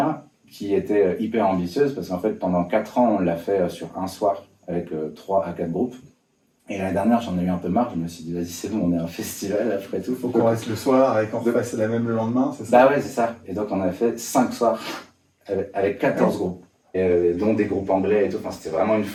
qui était hyper ambitieuse, parce qu'en fait pendant 4 ans on l'a fait sur un soir, avec 3 à 4 groupes. Et l'année dernière, j'en ai eu un peu marre. Je me suis dit, vas-y, c'est bon, on est un festival après tout. Faut qu'on reste le soir et qu'on refasse la même le lendemain, c'est ça? Bah ouais, c'est ça. Et donc, on a fait 5 soirs avec 14 groupes, dont des groupes anglais et tout. Enfin, c'était vraiment une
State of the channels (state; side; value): identical; both; correlation 1.00